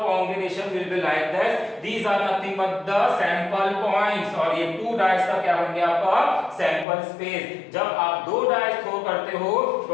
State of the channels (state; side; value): drops out; right; at 6.9 s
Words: combination will be like this, these are nothing but the sample points, और ये टू डाइस का क्या बन गया आपका सैंपल स्पेस। जब आप दो डाइस थ्रो करते हो